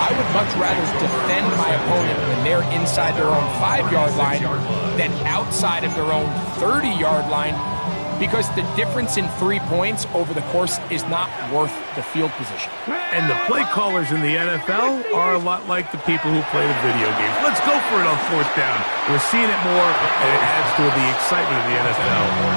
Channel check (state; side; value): inverted; both; correlation -1.00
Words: would much rather defend my opponent when they're inside their own 5-yard line than outside of their own 30-yard line, because the difference in 3 points over the course is not worth the field position. And the play callers in the NFL are a lot like the people who play the video games. Let's go for it on 4th down. We're seeing it more, and it adds to the excitement of the NFL